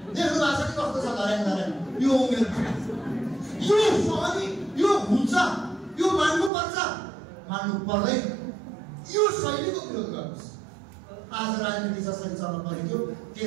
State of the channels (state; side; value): drops out; left; at 6.5 s